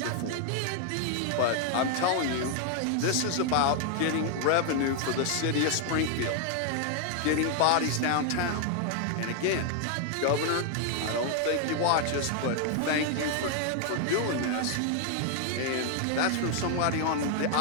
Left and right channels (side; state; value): both; different; correlation 0.00